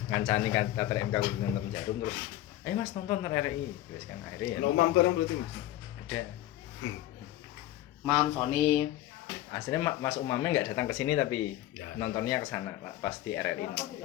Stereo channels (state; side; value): quieter; right; 14.4 dB